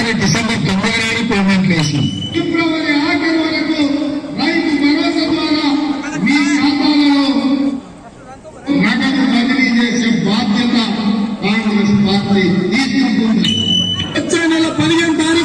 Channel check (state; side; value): identical; both; correlation 1.00